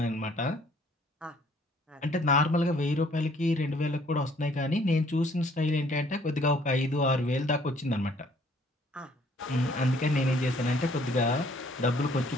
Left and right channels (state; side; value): normal; both; correlation 0.61